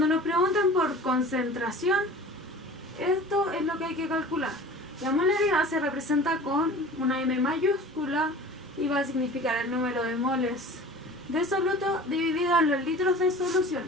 nos preguntan por concentración, esto es lo que hay que calcular. La molaridad se representa con una M mayúscula y va a significar el número de moles de soluto dividido en los litros de solución.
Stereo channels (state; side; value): normal; both; correlation 0.41